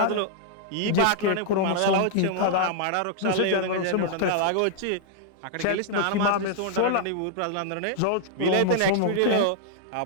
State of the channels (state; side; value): different; both; correlation -0.01